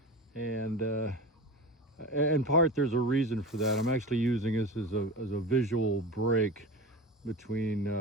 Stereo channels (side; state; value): both; normal; correlation 0.29